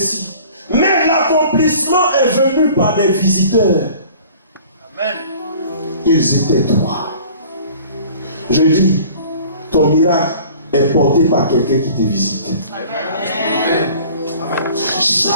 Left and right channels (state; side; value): inverted; both; correlation -0.48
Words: Mais l'accomplissement est venu par des visiteurs. Amen. Ils étaient trois. Je dis, ton miracle est porté par quelqu'un qui te visite. Amen. Amen.